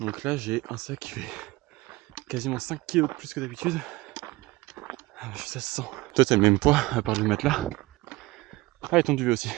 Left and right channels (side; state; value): left; quieter; 20.5 dB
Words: là, j'ai un sac qui fait quasiment 5 kg de plus que d'habitude. Ça se sent. Toi, t'as le même poids, à part le matelas. Ah, et ton duvet aussi.